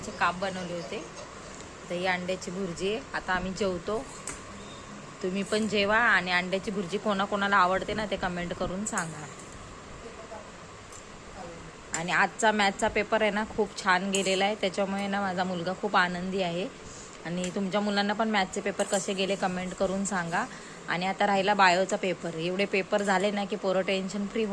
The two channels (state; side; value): identical; both; correlation 1.00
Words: काप बनवले होते, तर ही अंड्याची भुर्जी आहे. आता आम्ही जेवतो. तुम्ही पण जेवा आणि अंड्याची भुर्जी कोणाकोणाला आवडते ना ते कमेंट करून सांगा. आणि आजचा मॅथचा पेपर आहे ना खूप छान गेलेला आहे, त्याच्यामुळे ना माझा मुलगा खूप आनंदी आहे. आणि तुमच्या मुलांना पण मॅथचे पेपर कसे गेले कमेंट करून सांगा. आणि आता राहिला बायोचा पेपर. एवढे पेपर झाले ना की पोरं टेन्शन फ्री